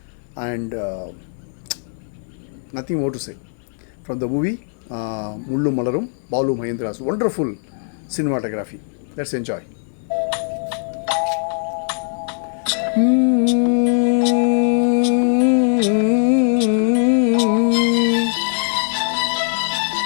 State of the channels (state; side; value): silent; right; digital silence